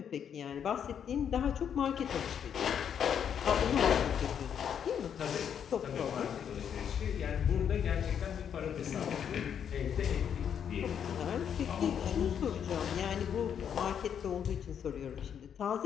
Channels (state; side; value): quieter; right; 8.3 dB